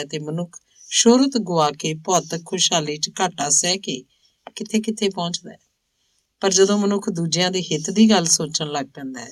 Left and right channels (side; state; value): both; identical; correlation 1.00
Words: ਤੇ ਮਨੁੱਖ ਸ਼ੋਹਰਤ ਗੁਆ ਕੇ ਭੌਤਿਕ ਖੁਸ਼ਹਾਲੀ 'ਚ ਘਾਟਾ ਸਹਿ ਕੇ ਕਿੱਥੇ ਪਹੁੰਚਦਾ ਹੈ। ਪਰ ਜਦੋਂ ਮਨੁੱਖ ਦੂਜਿਆਂ ਦੇ ਹਿੱਤ ਦੀ ਗੱਲ ਸੋਚਣ ਲੱਗ ਪੈਂਦਾ ਹੈ,